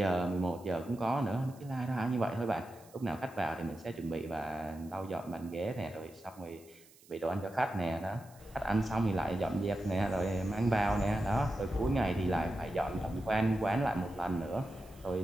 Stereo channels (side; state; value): right; noise; hiss, 25 dB below the sound